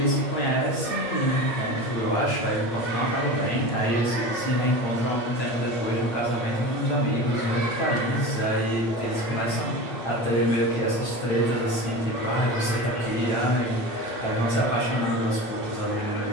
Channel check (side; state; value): right; late; 8.8 ms